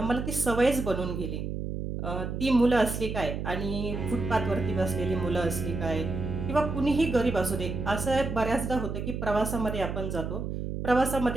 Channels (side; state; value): right; noise; hum, 4 dB below the sound